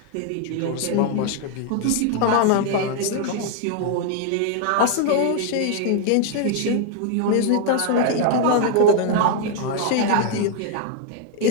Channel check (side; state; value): both; different; correlation 0.00